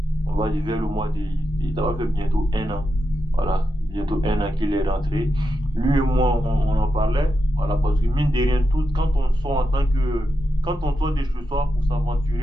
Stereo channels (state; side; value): normal; both; correlation 0.87